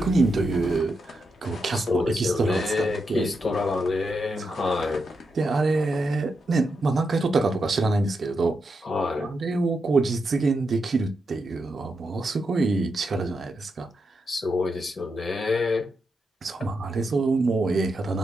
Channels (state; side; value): normal; both; correlation 0.85